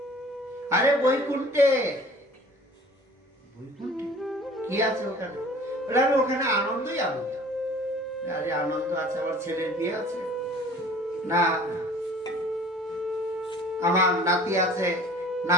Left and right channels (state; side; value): normal; both; correlation 0.48